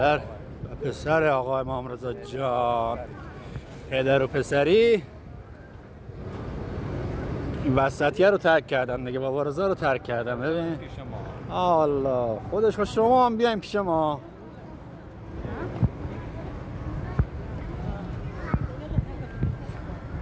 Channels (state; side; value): identical; both; correlation 1.00